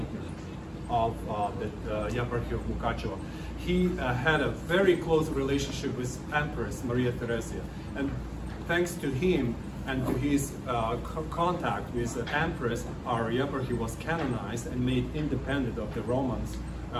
of the Yeparchy of Mukachevo. He had a very close relationship with Empress Maria Theresia, and thanks to him and to his contact with the Empress, our Yeparchy was canonized and made independent of the Roman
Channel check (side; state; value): both; identical; correlation 1.00